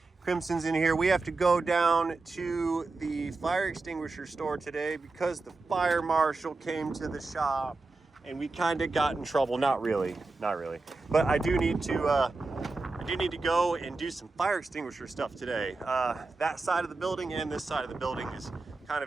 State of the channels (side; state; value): left; quieter; 3.6 dB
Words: Crimson's in here. We have to go down to the fire extinguisher store today because the fire marshal came to the shop and we kind of got in trouble. Not really. But I do need to go and do some fire extinguisher stuff today. That side of the building and this side of the building is kind